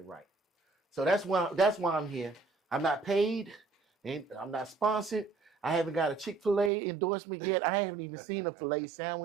right. So that's why I'm here. I'm not paid, and I'm not sponsored. I haven't got a Chick-fil-A endorsement yet. I haven't even seen a filet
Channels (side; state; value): left; drops out; at 6.7 s